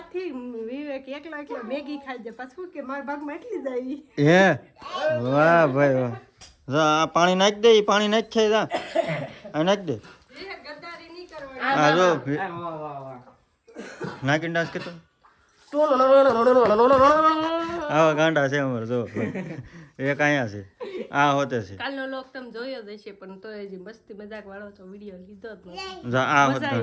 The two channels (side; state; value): both; identical; correlation 1.00